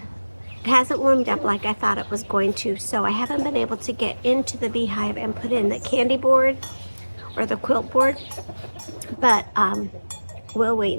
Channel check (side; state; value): both; inverted; correlation -1.00